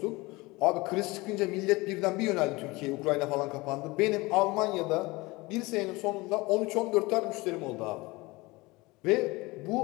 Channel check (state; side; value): quieter; right; 22.8 dB